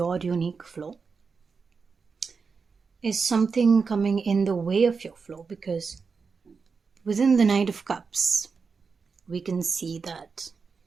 unique flow? Is something coming in the way of your flow? Because within the Knight of Cups, we can see that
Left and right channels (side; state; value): left; quieter; 5.1 dB